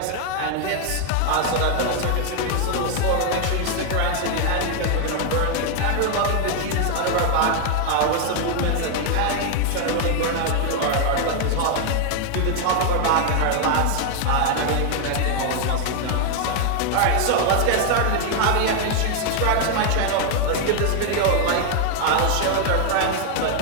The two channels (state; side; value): different; both; correlation 0.00